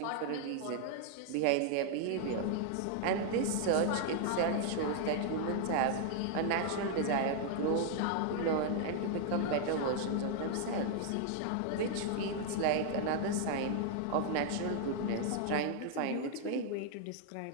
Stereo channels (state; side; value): different; both; correlation 0.00